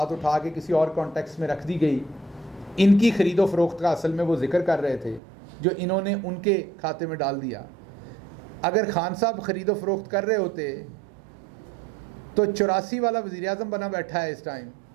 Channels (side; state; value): left; drops out; at 5.2 s